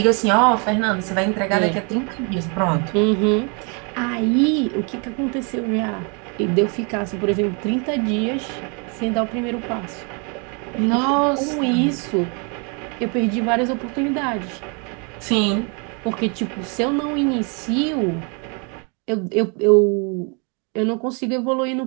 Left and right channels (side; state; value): left; quieter; 35.1 dB